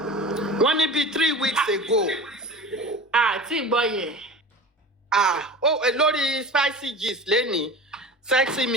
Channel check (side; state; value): both; normal; correlation 0.35